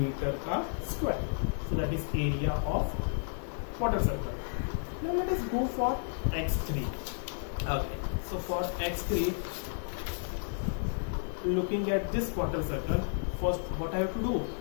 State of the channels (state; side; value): silent; right; digital silence